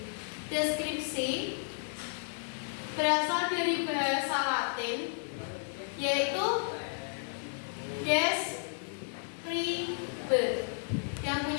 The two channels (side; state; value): right; silent; 56 dB below the other